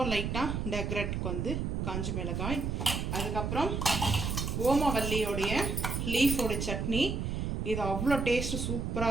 லைட்டாக டெக்ரேட்டுக்கு வந்து காஞ்ச மிளகாய், அதுக்கப்புறம் ஓமவல்லியோடைய லீஃபோட சட்னி. இது அவ்வளோ டேஸ்ட்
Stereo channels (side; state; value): right; noise; rumble, 1 dB below the sound